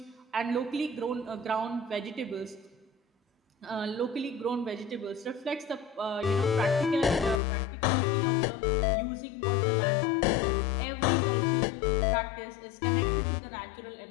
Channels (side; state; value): right; drops out; at 7.4 s